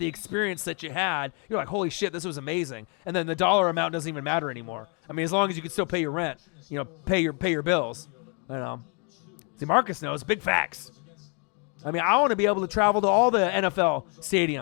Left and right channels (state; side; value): quieter; right; 36.8 dB